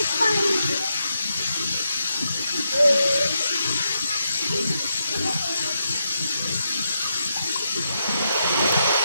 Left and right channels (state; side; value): inverted; both; correlation -0.83